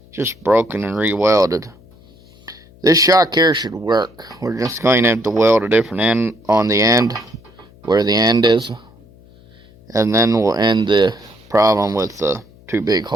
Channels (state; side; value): noise; left; hum, 26 dB below the sound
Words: just broken and re-welded. This shock here should work. We're just going to have to weld a different end on the end, where the end is. And then we'll end the problem with the too big